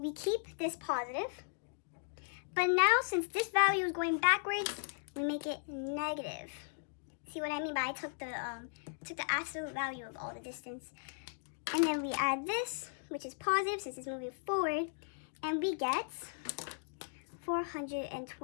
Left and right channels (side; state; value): right; silent; digital silence